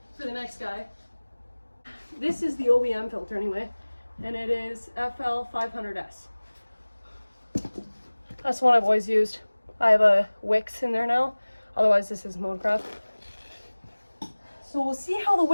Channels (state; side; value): inverted; both; correlation -1.00